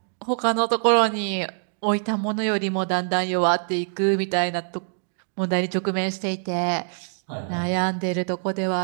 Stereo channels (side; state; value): left; silent; digital silence